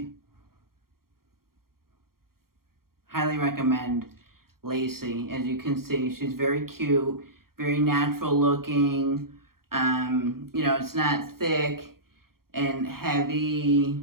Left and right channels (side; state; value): left; late; 0.93 ms